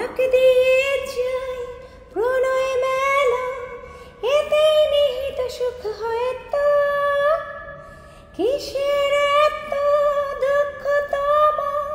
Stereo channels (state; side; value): identical; both; correlation 1.00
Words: দিয়ে যাই প্রণয় মেলা, এতেই নিহিত সুখ হয়তো। কিসের এত দুঃখ তোমার,